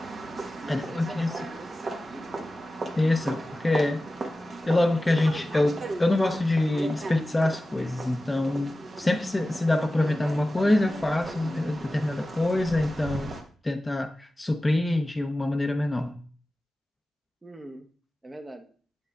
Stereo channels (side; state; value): both; normal; correlation 0.95